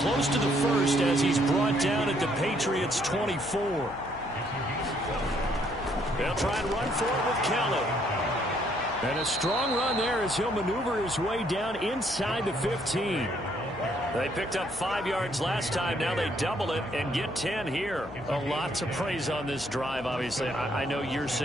to the 1st as he's brought down at the Patriots' 24. They'll try and run for it with Kelly. And a strong run there as he'll maneuver his way down inside the 15. They picked up 5 yards last time. Now they double it and get 10 here. A lot to praise on this drive, obviously. I know you're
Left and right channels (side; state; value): left; noise; hum, 15 dB below the sound